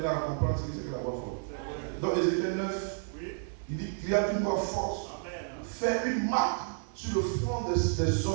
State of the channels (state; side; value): silent; left; digital silence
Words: à comprendre ce que c'est que la voix forte. Donc Ézéchiel 9, il dit qu'il y a une voix forte. Faire une marque sur le front des